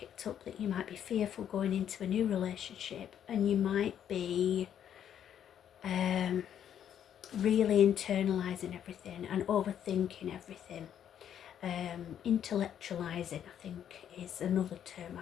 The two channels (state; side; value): quieter; right; 9.5 dB